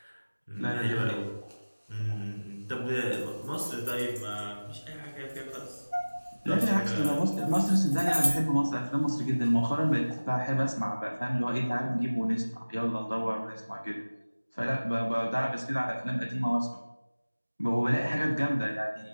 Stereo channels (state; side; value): inverted; both; correlation -1.00